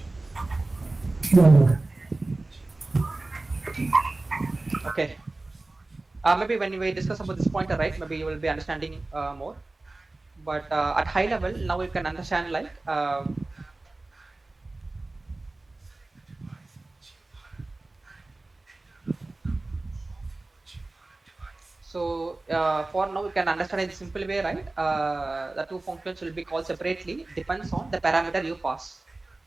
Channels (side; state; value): left; quieter; 3.0 dB